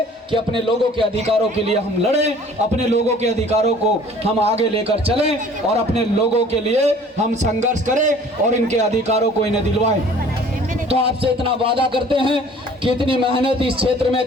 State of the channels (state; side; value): normal; both; correlation 0.51